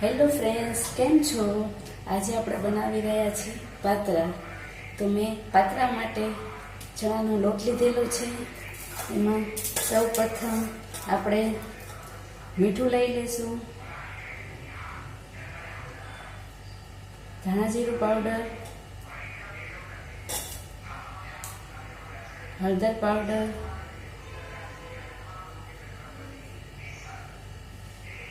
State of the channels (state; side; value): identical; both; correlation 1.00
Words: Hello friends, કેમ છો? આજે આપણે બનાવી રહ્યા છીએ પાતરા. તો મેં પાતરા માટે ચણાનો લોટ લીધેલો છે. એમાં સૌ પ્રથમ આપણે મીઠું લઈ લઈશું, ધાણા જીરું પાવડર, હળદર પાવડર,